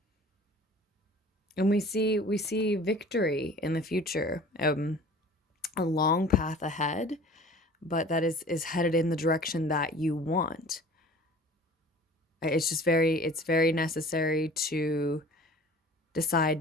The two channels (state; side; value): normal; both; correlation 0.46